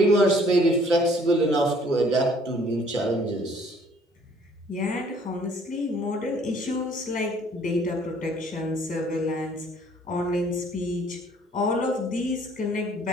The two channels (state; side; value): normal; both; correlation 0.58